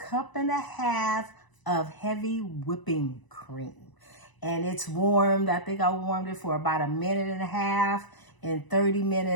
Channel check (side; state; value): right; late; 1.0 ms